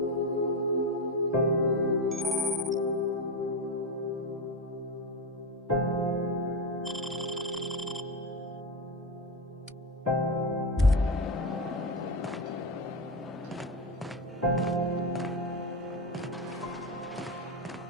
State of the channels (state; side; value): normal; both; correlation 0.15